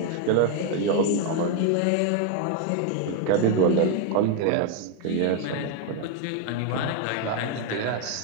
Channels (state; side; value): different; both; correlation 0.00